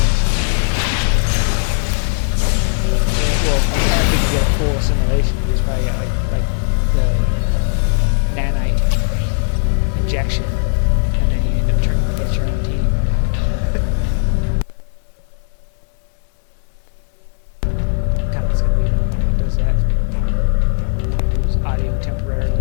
Well, I'm trying to think you get a full assimilation. You just probably got like the nanite injection, and then you end up turning against your own team. Kind of what's gonna be when it does that. Lose audio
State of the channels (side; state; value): right; silent; 68 dB below the other